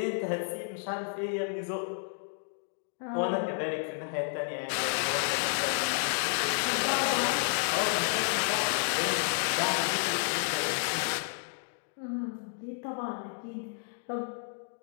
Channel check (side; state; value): right; silent; digital silence